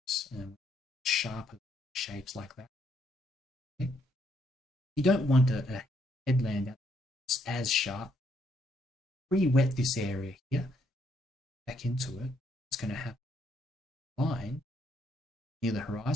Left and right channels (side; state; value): both; normal; correlation 0.72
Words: Sharper shapes like that. Okay. You don't want a headland that's as sharp. Pre-wet this area here. Back into it. It's going to have a line near the